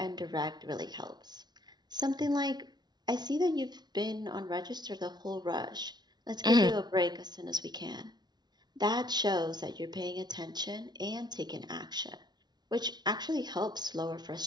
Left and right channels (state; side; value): late; left; 0.20 ms